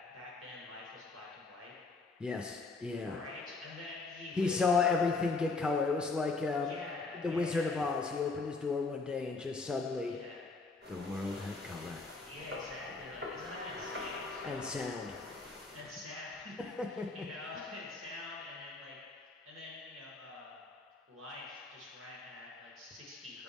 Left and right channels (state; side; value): quieter; right; 3.9 dB